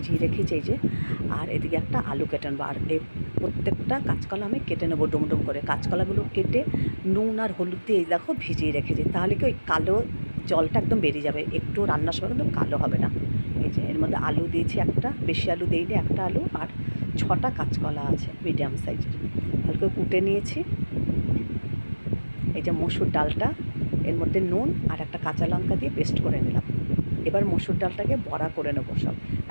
রেখেছি এই যে। আর এদিকে একটা আলু কেটে নেবো। আর এই প্রত্যেকটা কাঁচকলা আমি কেটে নেবো ডুমডুম করে। কাঁচকলাগুলো কেটে নুন আর হলুদ দিয়ে এই দেখো ভিজিয়ে রেখেছি, তাহলে কি ওই কালো জলটা একদম বেরিয়ে যাবে, একটু রান্নার সময় কিন্তু কালো হবে না। এই যে এর মধ্যে আলু দিয়েছি একটা, বেশি আলু দিইনি, একটা আলু আর 6টা কাঁচকলা আছে মিডিয়াম সাইজের, হালকা কুটে নিয়েছি। এই যে মসুর ডালটা, এর মধ্যে নুন আর একটা কাঁচা লঙ্কা দিয়ে পেস্ট করে নিলাম। এবার মসুর ডালটাকে বড়া করে নেবো সব।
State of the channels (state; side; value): inverted; both; correlation -1.00